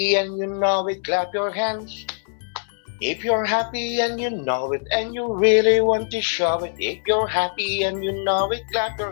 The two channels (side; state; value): right; silent; 64 dB below the other